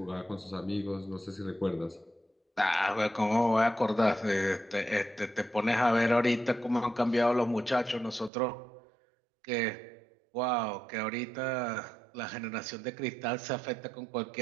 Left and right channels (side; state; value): left; drops out; at 8.3 s